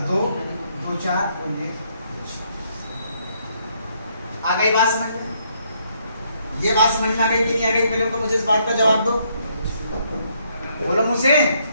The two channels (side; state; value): both; inverted; correlation -0.72